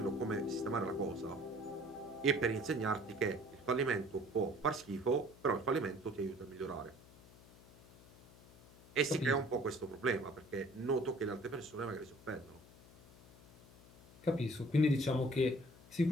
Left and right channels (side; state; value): left; noise; hum, 22 dB below the sound